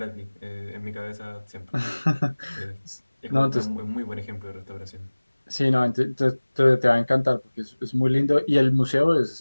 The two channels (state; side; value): inverted; both; correlation -1.00